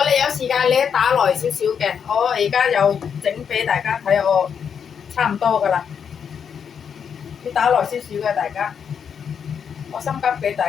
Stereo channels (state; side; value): quieter; right; 7.3 dB